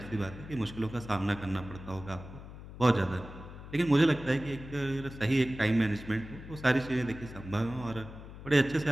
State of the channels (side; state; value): left; noise; hum, 14 dB below the sound